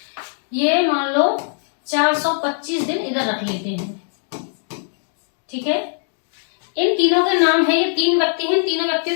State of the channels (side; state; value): right; silent; digital silence